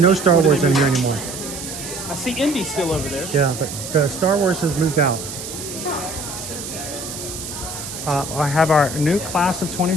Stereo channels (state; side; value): noise; right; hiss, 9 dB below the sound